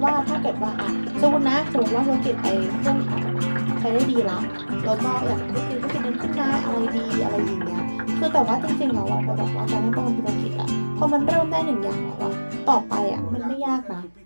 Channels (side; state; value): both; inverted; correlation -1.00